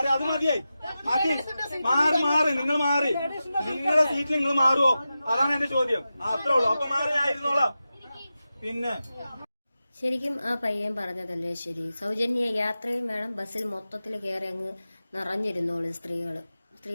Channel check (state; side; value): inverted; both; correlation -0.92